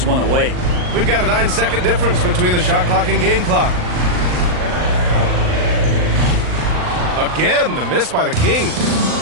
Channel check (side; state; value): left; late; 39 ms